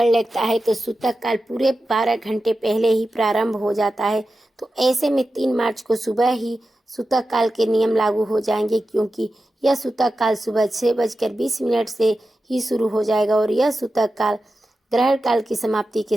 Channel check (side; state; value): both; normal; correlation 0.92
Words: लगता है तो सूतक काल पूरे 12 घंटे पहले ही प्रारंभ हो जाता है। तो ऐसे में 3 मार्च को सुबह ही सूतक काल के नियम लागू हो जाएंगे, क्योंकि यह सूतक काल सुबह 6:20 से ही शुरू हो जाएगा और यह सूतक काल ग्रहण काल की समाप्ति